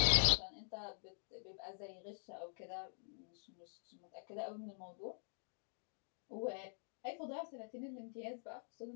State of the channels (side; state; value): right; silent; digital silence